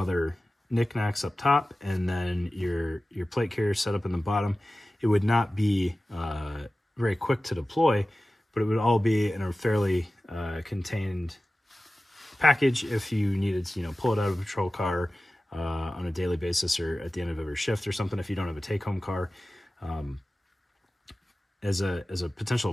knickknacks up top, and then your plate carrier set up in the bottom, it would not be very quick to deploy, but it would all be in a fairly contained package if you needed to, you know, pull it out of a patrol car on a daily basis or at the end of every shift or something if you don't have a take-home car. As a potential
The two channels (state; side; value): normal; both; correlation 0.96